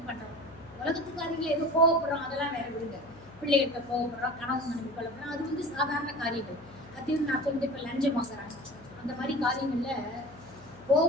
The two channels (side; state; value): left; noise; hum, 21 dB below the sound